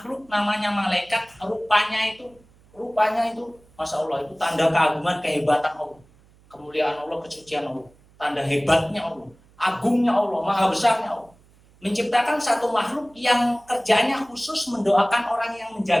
namanya malaikat. Rupanya itu, Masya Allah, itu tanda keagungan, kehebatan Allah, kemuliaan Allah, kesucian Allah, tanda hebatnya Allah, agungnya Allah, maha besarnya Allah. Menciptakan satu makhluk yang kerjanya khusus mendoakan orang yang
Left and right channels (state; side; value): noise; right; hum, 29 dB below the sound